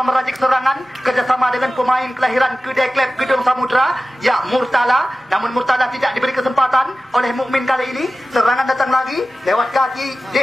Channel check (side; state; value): both; normal; correlation 0.95